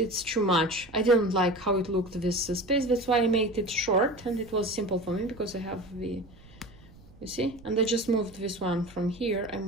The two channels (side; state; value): right; noise; rumble, 23 dB below the sound